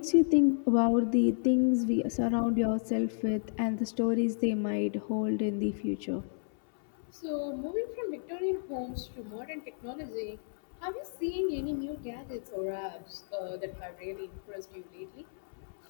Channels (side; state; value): right; silent; 57 dB below the other